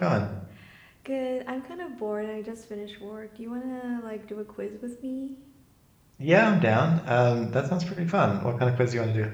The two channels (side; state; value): both; identical; correlation 1.00